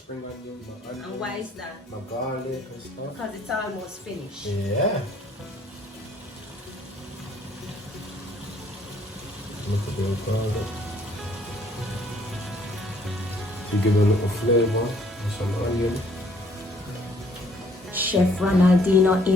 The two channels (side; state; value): both; normal; correlation 0.62